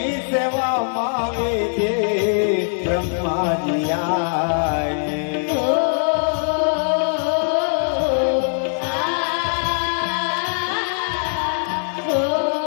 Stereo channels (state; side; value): silent; right; 65 dB below the other